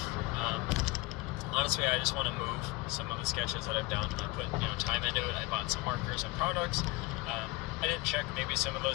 Honestly, I just want to move some of the sketches that I've done. I put time into it. I bought some markers and products. I didn't check. Maybe some of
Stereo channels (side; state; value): right; quieter; 21.9 dB